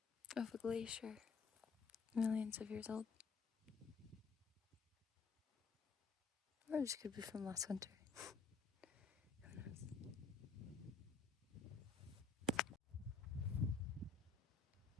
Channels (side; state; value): right; quieter; 4.8 dB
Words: of a glacier millions of years old? Or this could be from last winter.